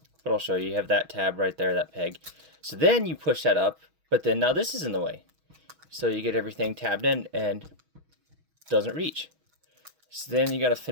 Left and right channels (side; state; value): left; late; 6.2 ms